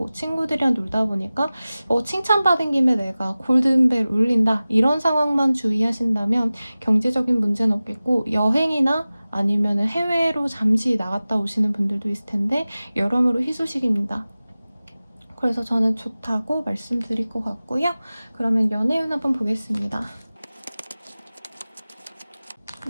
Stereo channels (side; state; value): both; inverted; correlation -0.97